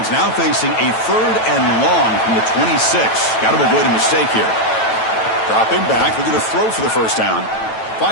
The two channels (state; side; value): late; right; 9.1 ms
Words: now facing a 3rd and long from the 26. Got to avoid a mistake here. Dropping back. They're going to throw for the 1st down.